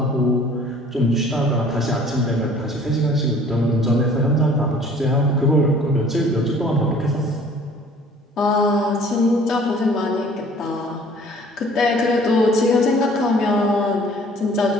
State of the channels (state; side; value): normal; both; correlation 0.52